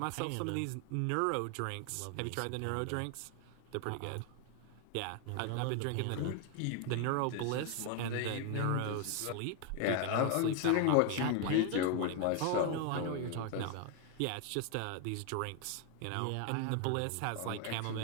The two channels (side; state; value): both; different; correlation 0.01